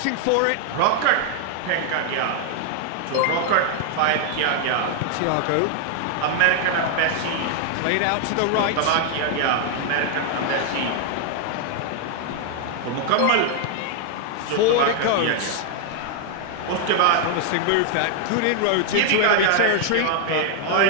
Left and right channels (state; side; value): different; both; correlation 0.00